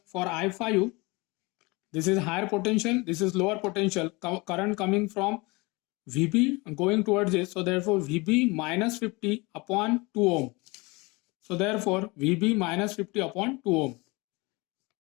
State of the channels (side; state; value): right; quieter; 25.4 dB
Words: for I5, this is higher potential, this is lower potential, current coming from VB going towards this. So therefore VB minus 50 upon 2 ohm. So therefore VB minus 50 upon 2 ohm.